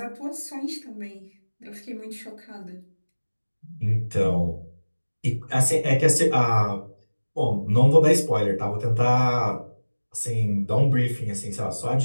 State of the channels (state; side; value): inverted; both; correlation -1.00